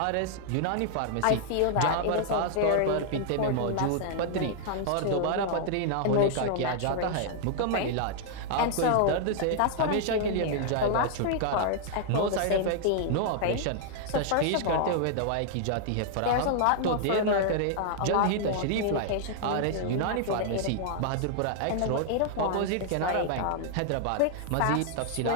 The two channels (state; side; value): different; both; correlation -0.01